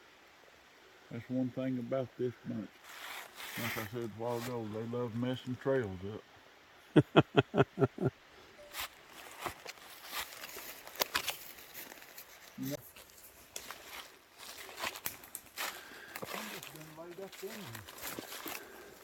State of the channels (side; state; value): both; identical; correlation 1.00